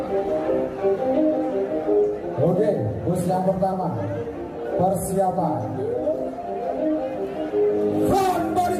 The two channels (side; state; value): both; identical; correlation 1.00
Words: Oke, bus yang pertama. Persiapan front body